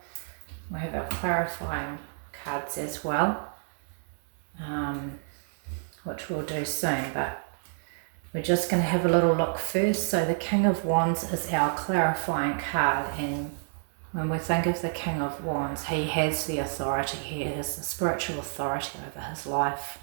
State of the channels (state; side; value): silent; left; digital silence